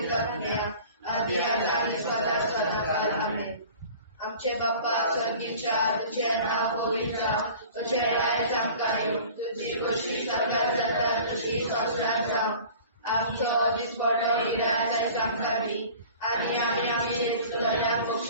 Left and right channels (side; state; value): both; inverted; correlation -0.44